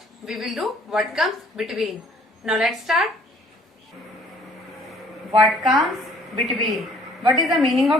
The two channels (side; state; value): both; normal; correlation 0.58